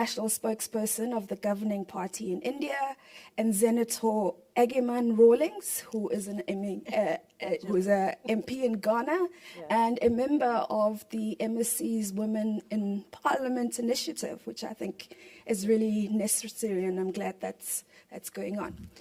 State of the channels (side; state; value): both; identical; correlation 1.00